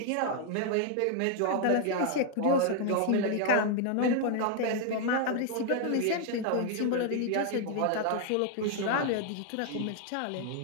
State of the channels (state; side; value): different; both; correlation 0.00